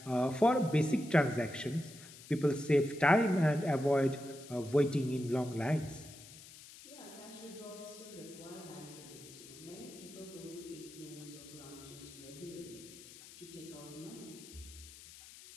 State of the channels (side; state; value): left; noise; hiss, 17 dB below the sound